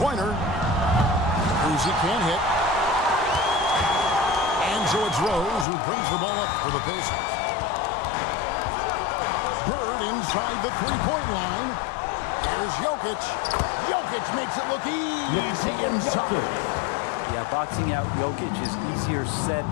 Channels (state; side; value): drops out; right; at 5.7 s